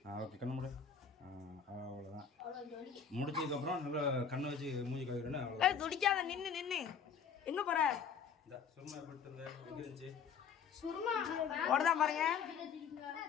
ஓகே கண்ணு மூடு. அவ்வளோதான். முடிச்சதுக்கப்புறம் நல்லா கண்ணை வச்சு மூஞ்சி கழுவுறேன்னு அவ்வளோ. துடிக்காத நின்று நின்று எங்கே போகிற? இந்த சுருமா போட்டு இருந்த எங்கே இருந்துச்சு? சுருமா ஓடதான் பாருங்க.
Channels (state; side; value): quieter; right; 6.8 dB